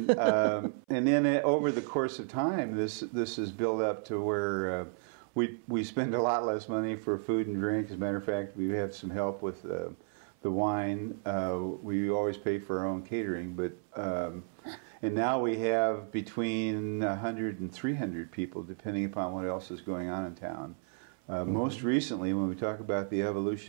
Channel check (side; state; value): left; silent; 56 dB below the other